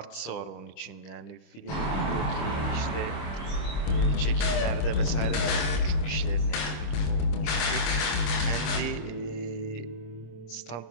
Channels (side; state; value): right; late; 26 ms